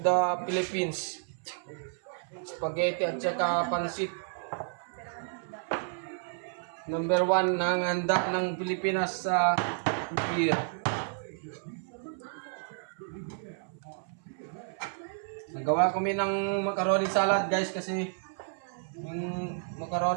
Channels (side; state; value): left; silent; 57 dB below the other